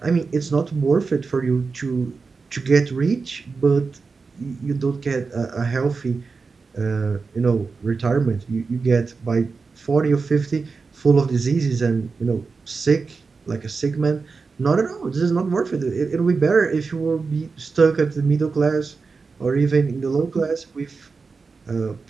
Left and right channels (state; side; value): quieter; left; 4.6 dB